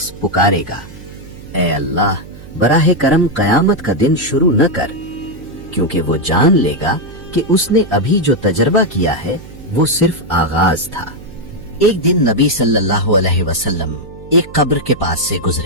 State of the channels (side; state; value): right; noise; hum, 17 dB below the sound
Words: पुकारेगा, ऐ अल्लाह, बराहे करम कयामत का दिन शुरू न कर, क्योंकि वो जान लेगा कि उसने अभी जो तजर्बा किया है वो सिर्फ आगाज था। एक दिन नबी सल्लल्लाहु अलैहि वसल्लम एक कब्र के पास से